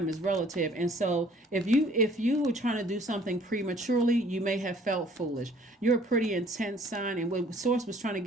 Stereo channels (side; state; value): both; normal; correlation 0.57